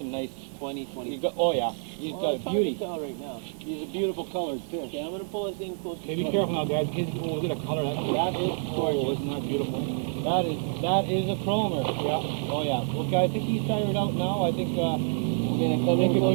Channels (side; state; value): left; silent; 60 dB below the other